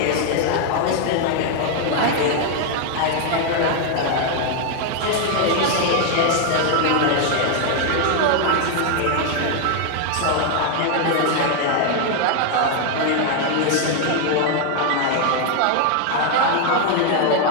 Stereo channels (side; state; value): both; different; correlation 0.00